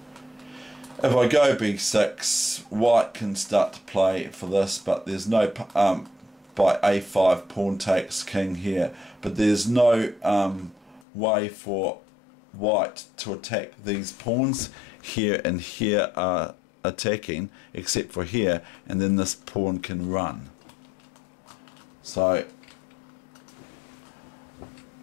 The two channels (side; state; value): right; drops out; at 11.0 s